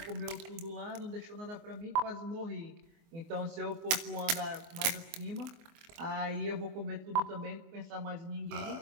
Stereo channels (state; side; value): late; left; 24 ms